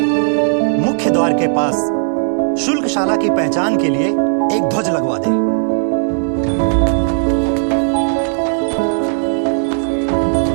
मुख्य द्वार के पास शुल्कशाला की पहचान के लिए एक ध्वज लगवा दे।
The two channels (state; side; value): silent; left; digital silence